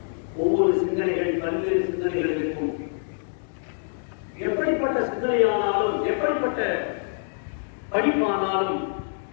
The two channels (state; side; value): silent; right; digital silence